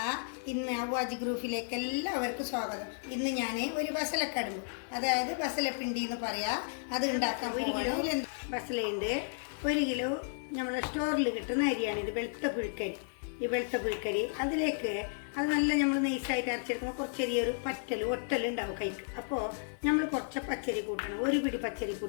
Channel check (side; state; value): right; silent; 56 dB below the other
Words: ഇന്ന് അവ്വാജ് ഗ്രൂപ്പിലേക്ക് എല്ലാവർക്കും സ്വാഗതം. ഇന്ന് ഞാൻ ഒരു ബസലക്കടുമ്പ്, അതായത് ബസലപ്പിണ്ടി എന്ന് പറയാം, അത് ഉണ്ടാക്കാൻ 1 കിലോ ബസലയുണ്ട്. 1 കിലോ നമ്മളെ സ്റ്റോറിൽ കിട്ടുന്ന അരിയാണ് ഇത്, വെളുത്ത പുഴുക്കരി. ഈ വെളുത്ത പുഴുക്കരി അതിലേക്ക് അത് നല്ല നമ്മൾ നൈസായിട്ട് അരച്ചെടുക്കുമ്പോൾ കുറച്ച് ചെറിയൊരു ഒട്ടലുണ്ടാവും കൈക്ക്. അപ്പോൾ നമ്മൾ കുറച്ച് പച്ചരി കൂട്ടണം. 1 പിടി പച്ചരി